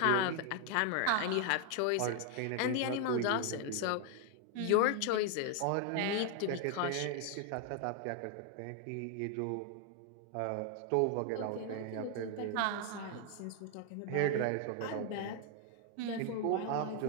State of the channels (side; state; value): both; different; correlation 0.00